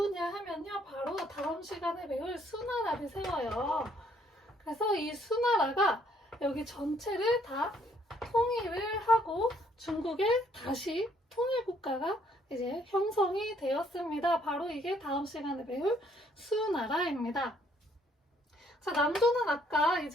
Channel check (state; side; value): normal; both; correlation 0.66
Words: 하면요. 바로 다음 시간에 배울 수나라를 세워요. 그래서 이 수나라가 여기 전체를 다 통일을 하고 중국의 다시 통일국가가 이제 형성이 되었습니다. 바로 이게 다음 시간에 배울 수나라입니다. 자, 남조는 아까